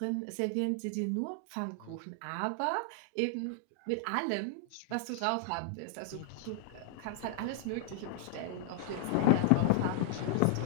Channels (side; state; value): both; different; correlation 0.00